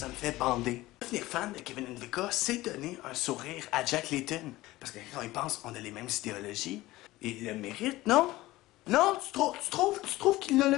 me fait bander. Devenir fan de Kevin Ndvika, c'est donner un sourire à Jack Layton. Parce que quand il pense, on a les mêmes idéologies. Et il le mérite, non? Non, tu trouves qu'il ne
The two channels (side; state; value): right; quieter; 17.9 dB